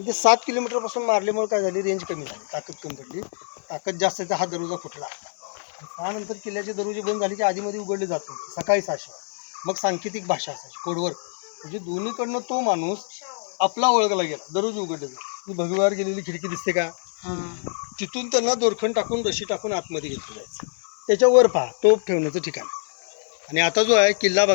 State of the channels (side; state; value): right; silent; digital silence